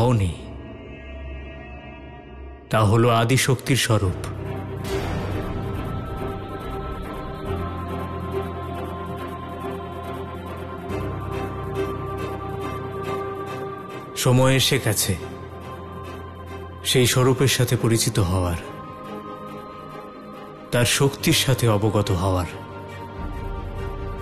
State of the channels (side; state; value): both; identical; correlation 1.00